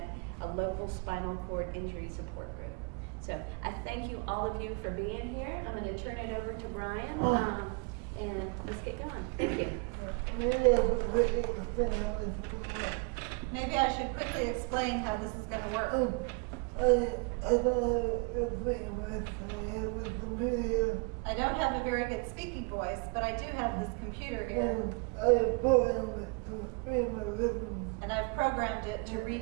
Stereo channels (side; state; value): left; quieter; 31.9 dB